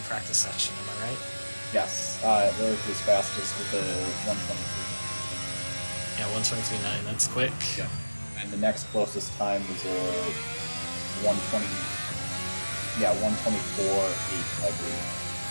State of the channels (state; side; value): inverted; both; correlation -1.00